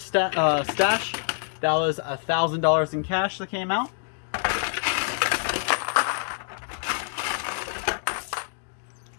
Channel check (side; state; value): right; silent; digital silence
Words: stash. That was $1,000 in cash that came out.